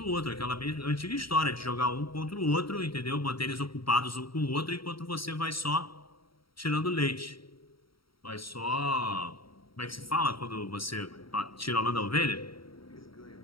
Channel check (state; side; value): late; right; 0.74 ms